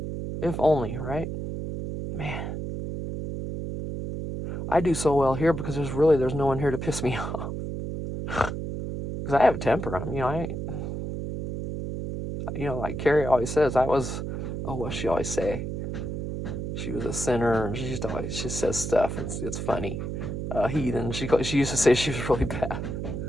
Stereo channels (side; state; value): right; noise; hum, 4 dB below the sound